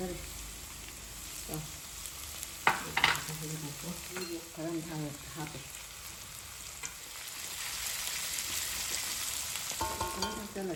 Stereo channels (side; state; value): both; identical; correlation 1.00